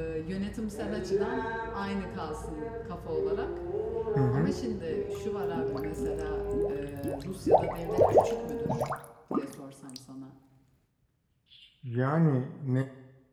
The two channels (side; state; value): both; identical; correlation 1.00